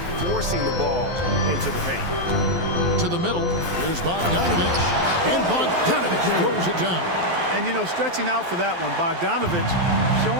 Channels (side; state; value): left; late; 12 ms